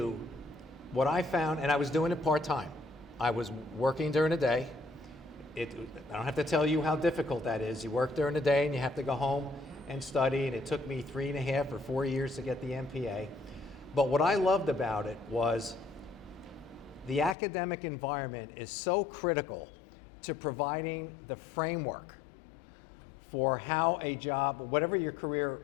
what I found, and I was doing it part-time. I was working during the day. I don't have to tell you how difficult that is. You work during the day and you have to go home and study, and it took me 3.5 or 4 years to get the MPA. But what I loved about it was the academic environment is so critical to providing the framework for how a job, whatever your career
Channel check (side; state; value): right; drops out; at 17.4 s